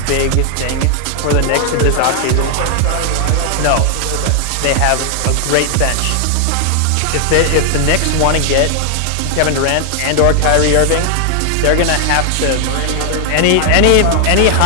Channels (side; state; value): both; different; correlation 0.00